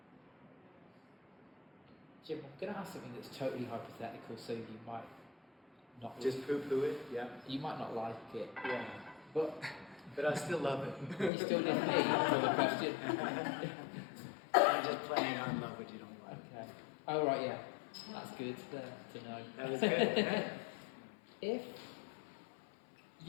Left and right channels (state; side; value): drops out; right; at 11.3 s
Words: Jim, I'm going to ask something that's totally hypothetical, so you might not Just poo-poo it. Yeah. You might not like it. Yeah. But I still love it. you still didn't answer the question. I'm just playing on love what you don't like. Okay. Oh right, yeah. That's good to know. That was good. Yeah. If